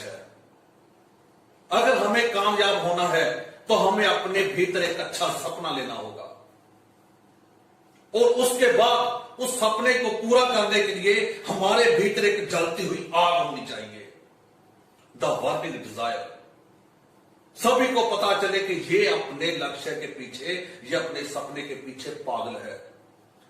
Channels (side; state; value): both; identical; correlation 1.00